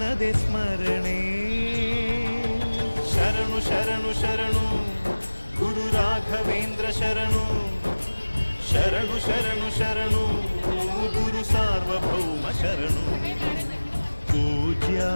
ಸ್ಮರಣೆ ಶರಣು ಶರಣು ಶರಣು ಗುರು ರಾಘವೇಂದ್ರ ಶರಣು ಶರಣು ಶರಣು ಶರಣು ಗುರು ಸಾರ್ವಭೌಮ ಶರಣು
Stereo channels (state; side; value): inverted; both; correlation -1.00